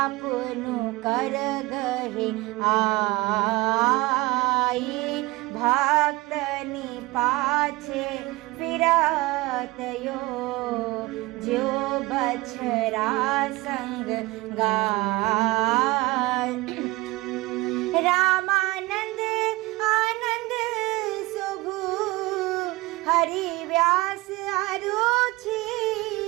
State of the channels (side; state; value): left; quieter; 21.3 dB